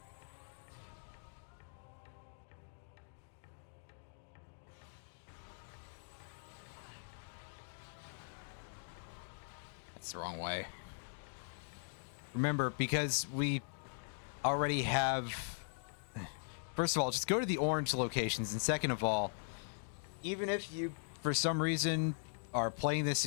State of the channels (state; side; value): silent; right; digital silence